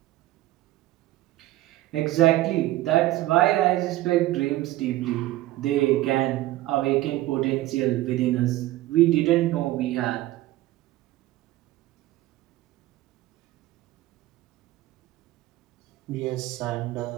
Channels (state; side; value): quieter; left; 16.4 dB